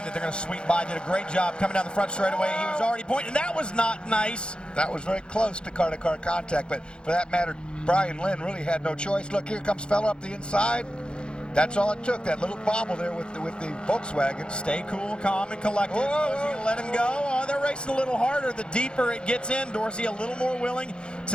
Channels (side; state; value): right; late; 0.052 ms